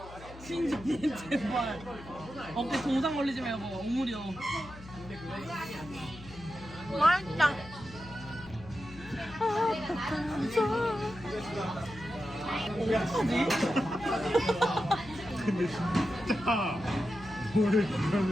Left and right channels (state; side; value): noise; left; hum, 17 dB below the sound